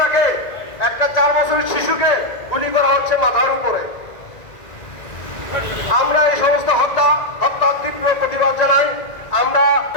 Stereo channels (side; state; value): right; late; 1.9 ms